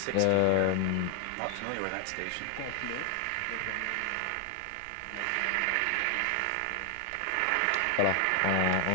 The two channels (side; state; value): both; different; correlation 0.00